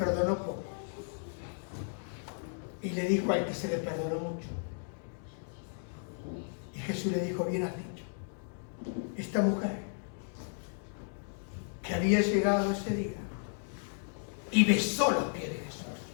poco? Y le dijo al que se le perdonó mucho. Y Jesús le dijo, bien has dicho. Esta mujer que había llegado ese día y besó los pies de Jesús,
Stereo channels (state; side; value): silent; right; digital silence